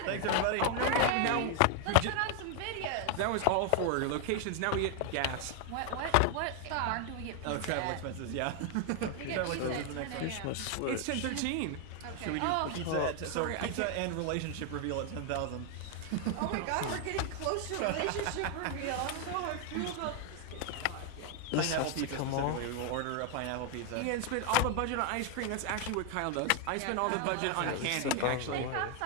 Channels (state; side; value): different; both; correlation 0.00